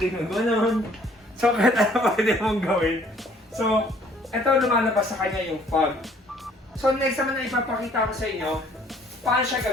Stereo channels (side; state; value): both; normal; correlation 0.59